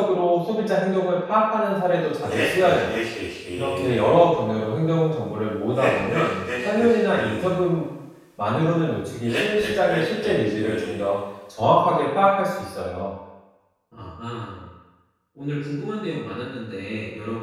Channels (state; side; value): identical; both; correlation 1.00